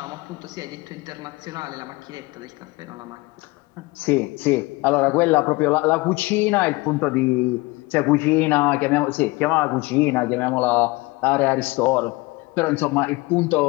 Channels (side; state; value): right; quieter; 23.3 dB